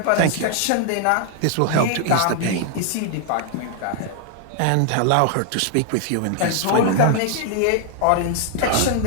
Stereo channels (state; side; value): different; both; correlation 0.00